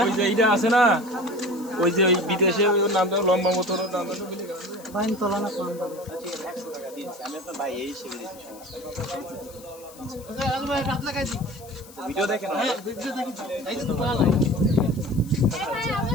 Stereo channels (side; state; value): left; noise; hiss, 21 dB below the sound